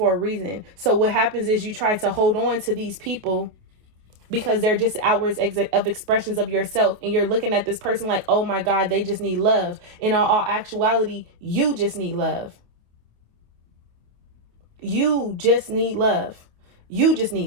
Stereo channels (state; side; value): late; left; 28 ms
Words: a reason. So what happens is you try to hold on to these people because they're just outwards of expressions of yourself. And you're looking at this person like, oh my God, they just need love. In all actuality, you just need love. You just need love. You just